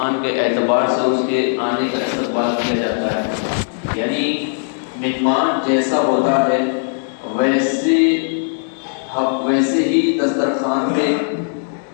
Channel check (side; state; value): right; silent; digital silence